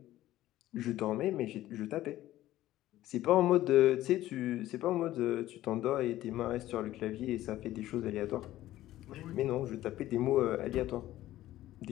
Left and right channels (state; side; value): quieter; right; 14.7 dB